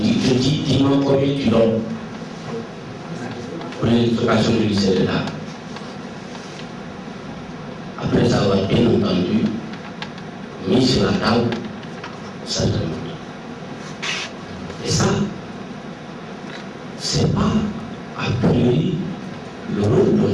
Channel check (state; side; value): identical; both; correlation 1.00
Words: dis-moi combien tu donnes pour l'électrification du lycée de Dara. Après avoir bien entendu mis sur la table sa demande. Et ça, c'est pas a priori le rôle d'un